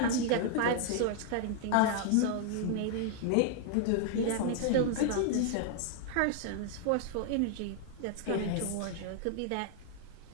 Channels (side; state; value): both; different; correlation 0.00